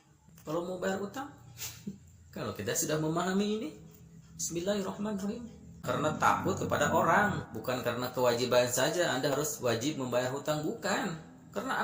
Kalau mau bayar utang, kalau kita sudah memahami ini, bismillahirrahmanirrahim. Karena takut kepada orang, bukan karena kewajiban saja Anda harus wajib membayar hutang, bukan. Karena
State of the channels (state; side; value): identical; both; correlation 1.00